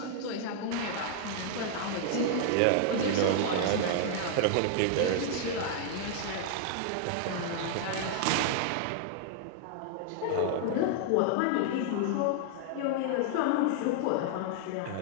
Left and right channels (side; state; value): both; different; correlation 0.00